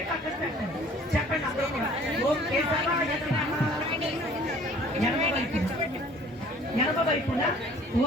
చెప్పండి. అందరూ కూడా ఓం కేశవాయ నమః. ఎడమ వైపున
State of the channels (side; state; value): both; normal; correlation 0.52